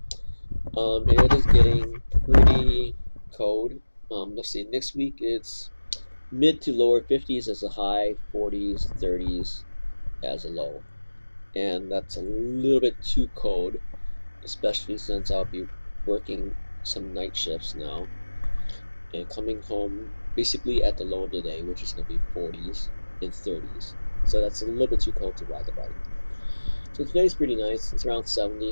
It is getting pretty cold. Let's see, next week it's mid to lower 50s as a high, 40s, 30s as a low. And that's a little bit too cold, especially since I'll be working some night shifts now and coming home basically at the low of the day, which is going to be 40s and 30s. So that's a little bit too cold to ride the bike. So today's pretty nice. It's around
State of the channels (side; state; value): both; inverted; correlation -1.00